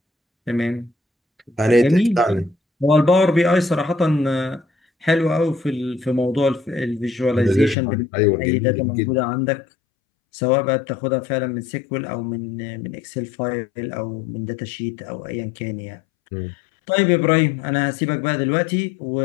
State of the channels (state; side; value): drops out; right; at 7.8 s